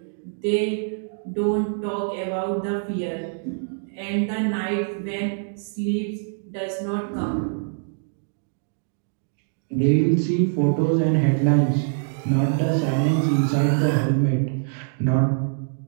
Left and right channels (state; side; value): silent; left; digital silence